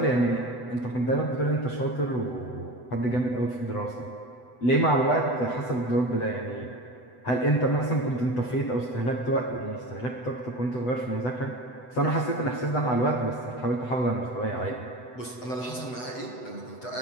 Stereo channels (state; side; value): late; right; 8.0 ms